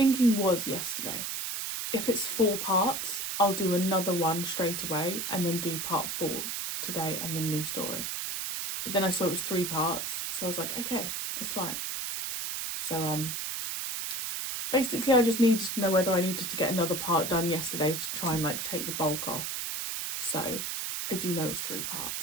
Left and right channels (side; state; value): right; noise; hiss, 3 dB below the sound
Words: was yesterday, if it's 4 parts, I'll do another one straight away and then do part 4 today and the new story. But then I saw it was 3 parts, so I was like, okay, that's fine. So basically I just needed to know whether I needed to get another part done yesterday to try and like take the bulk off. So I do know it's 3